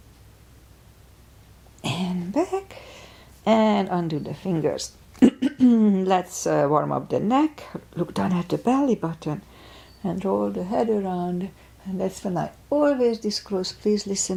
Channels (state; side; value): identical; both; correlation 1.00